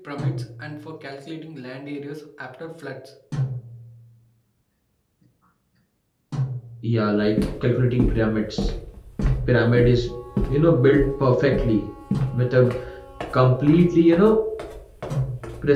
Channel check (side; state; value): both; identical; correlation 1.00